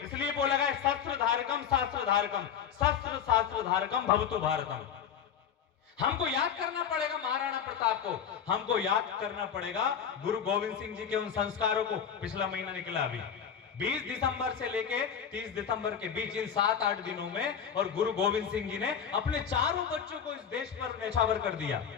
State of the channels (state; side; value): quieter; right; 8.0 dB